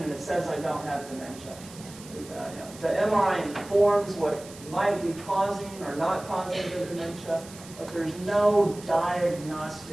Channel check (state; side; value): noise; right; hiss, 18 dB below the sound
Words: and it says I don't have dementia. The MRI informs what might be causing or not causing the dementia, but there's no